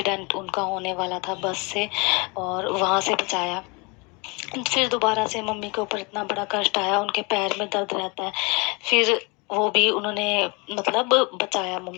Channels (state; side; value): quieter; right; 29.1 dB